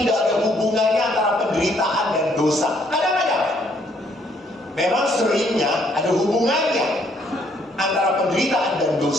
ada hubungannya antara penderitaan dan dosa. Kadang-kadang memang seringnya ada hubungannya antara penderitaan dan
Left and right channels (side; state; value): both; normal; correlation 0.67